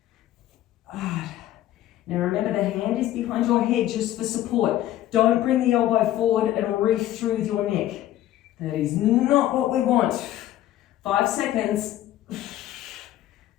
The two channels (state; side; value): quieter; right; 13.3 dB